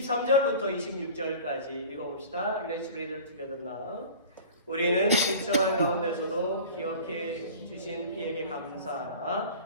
26절까지 읽어봅시다. Let's read it together now. 우리는 비천한 가운데서도 기억해 주신 이에게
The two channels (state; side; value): inverted; both; correlation -0.40